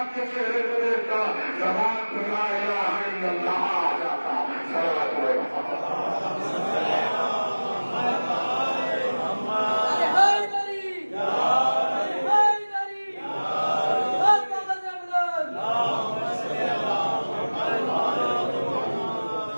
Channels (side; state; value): both; inverted; correlation -1.00